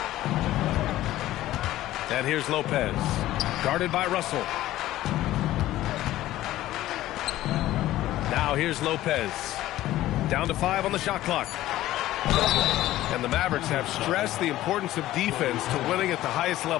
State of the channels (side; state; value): right; quieter; 15.0 dB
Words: And here's Lopez. Guarded by Russell. Now here's Lopez. Down to 5 on the shot clock. And the Mavericks have stressed the importance of defense to winning at the highest